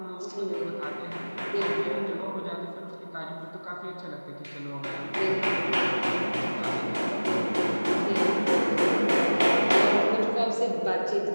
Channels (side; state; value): both; inverted; correlation -1.00